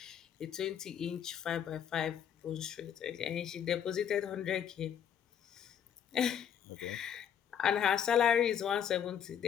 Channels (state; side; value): quieter; right; 8.7 dB